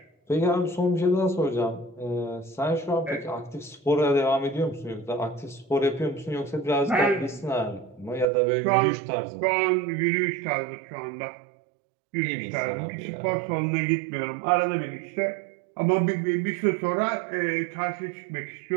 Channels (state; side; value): drops out; left; at 8.2 s